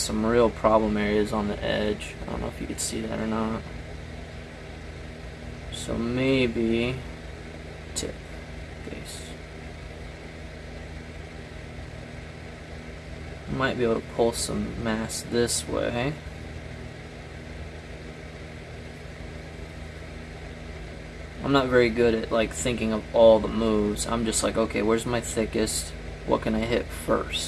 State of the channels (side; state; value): both; identical; correlation 1.00